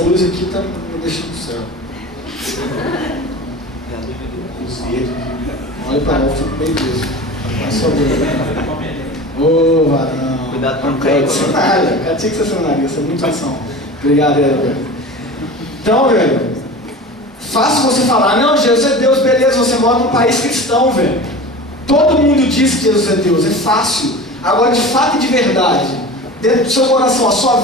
aqui está me deixando no céu. Olha para lá, eu fico bem preso. Ô, varão. Cuidado para não cair. Cenário, cara, tinha que ser essa é muita ação. Obrigado, velho. Então, velho, fácil você falar, não, Jesus é Deus, beleza, você mora num país cristão, velho. Todo mundo diz que Jesus é Deus, é fácil. Agora, de fato e de verdade, dentro do seu coração, a sua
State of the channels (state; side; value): normal; both; correlation 0.34